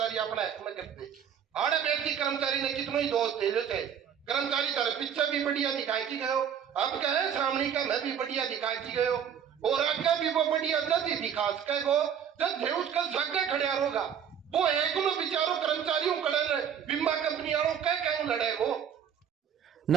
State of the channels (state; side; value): quieter; left; 8.4 dB